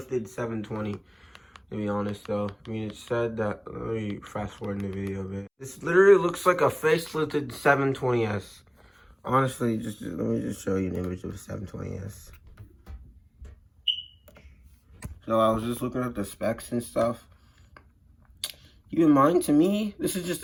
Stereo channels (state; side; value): identical; both; correlation 1.00